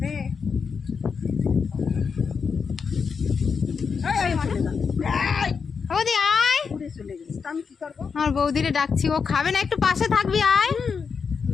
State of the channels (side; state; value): right; quieter; 5.8 dB